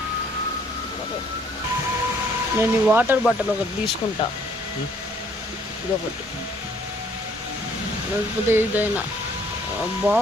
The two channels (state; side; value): normal; both; correlation 0.63